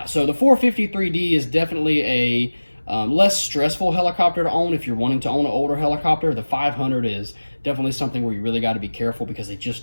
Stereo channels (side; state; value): both; inverted; correlation -1.00